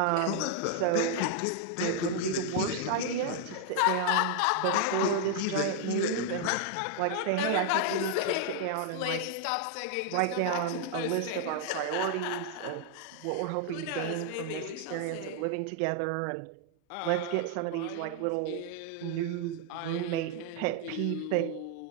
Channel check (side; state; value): both; different; correlation 0.00